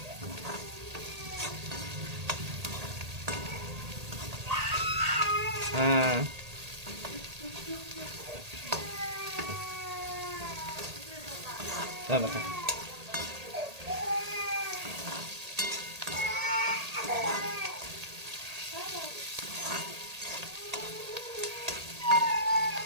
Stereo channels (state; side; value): late; left; 1.8 ms